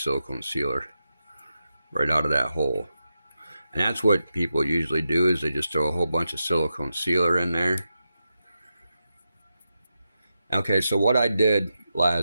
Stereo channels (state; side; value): inverted; both; correlation -0.88